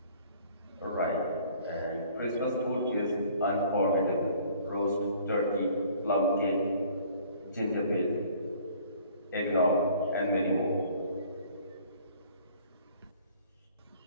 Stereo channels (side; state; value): both; inverted; correlation -0.54